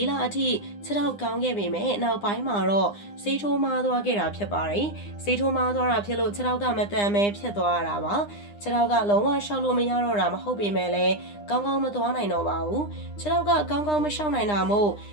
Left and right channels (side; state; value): right; late; 9.8 ms